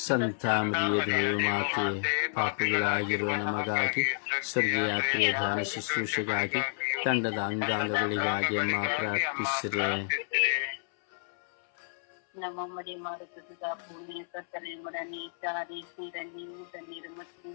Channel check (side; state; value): right; silent; 58 dB below the other